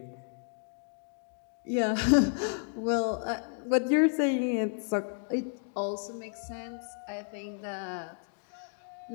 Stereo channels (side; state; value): right; silent; 56 dB below the other